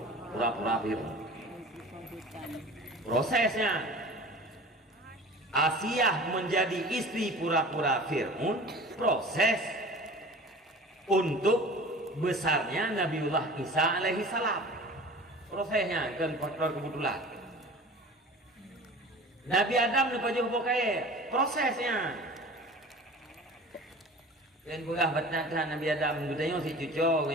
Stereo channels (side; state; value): both; normal; correlation 0.40